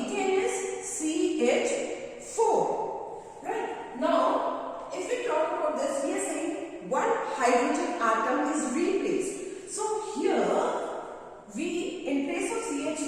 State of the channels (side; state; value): both; identical; correlation 1.00